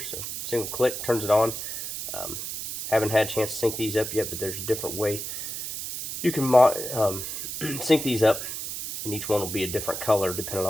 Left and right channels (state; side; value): noise; right; hiss, 6 dB below the sound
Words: so single click turns it on. Haven't had a chance to sync these up yet, but there's a different way you can sync these up, and each one will be a different color depending